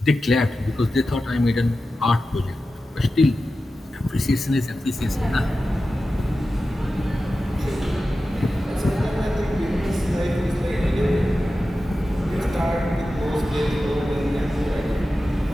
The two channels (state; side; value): normal; both; correlation 0.93